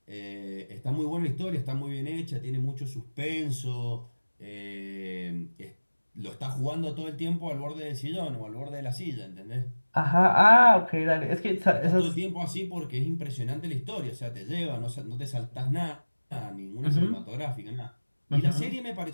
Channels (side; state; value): both; inverted; correlation -1.00